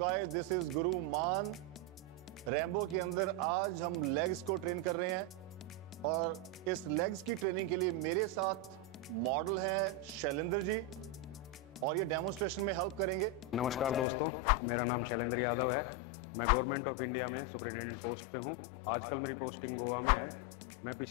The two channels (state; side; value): drops out; right; at 14.1 s